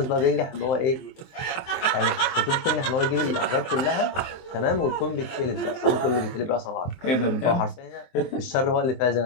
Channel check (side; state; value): right; late; 23 ms